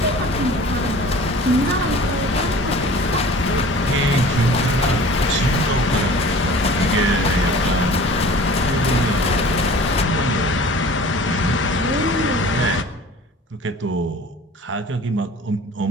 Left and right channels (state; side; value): normal; both; correlation 0.44